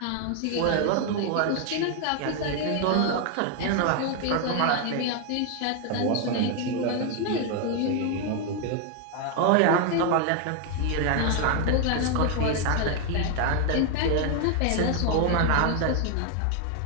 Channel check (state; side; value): different; both; correlation 0.01